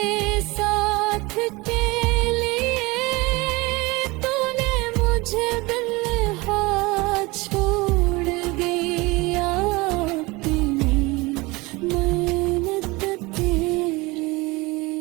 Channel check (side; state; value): left; quieter; 23.4 dB